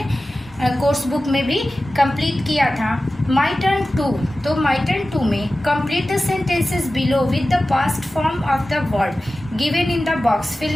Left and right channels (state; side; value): normal; both; correlation 0.95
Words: कोर्स बुक में भी कंप्लीट किया था. My turn 2. तो माई टर्न 2 में complete the sentences below with the past form of the word given in the box.